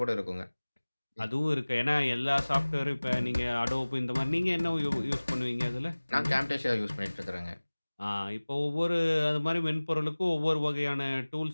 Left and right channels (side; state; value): both; inverted; correlation -1.00